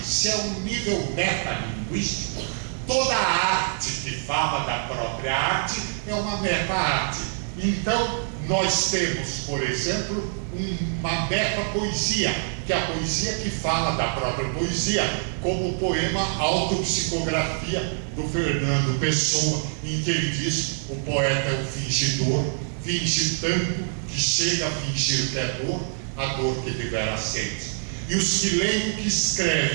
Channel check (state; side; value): silent; left; 62 dB below the other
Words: se é um nível metalinguístico, toda a arte que fala da própria arte é uma meta-arte. Então, nós temos, por exemplo, uma meta-poesia, que é a poesia que fala da própria poesia, como o poema Autopsicografia, do Fernando Pessoa, em que ele diz: o poeta é um fingidor, finge tanto que chega a fingir que é dor, a dor que devera sente. E os que leem o que